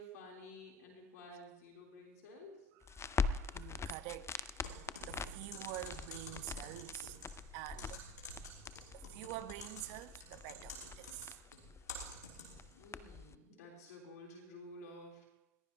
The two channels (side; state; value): both; normal; correlation 0.38